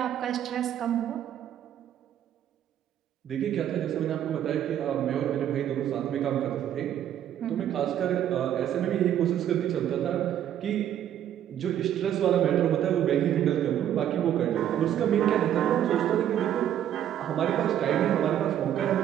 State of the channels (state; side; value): quieter; left; 10.6 dB